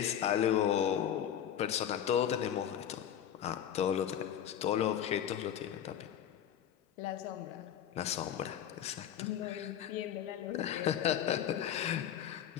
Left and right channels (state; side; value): quieter; right; 9.9 dB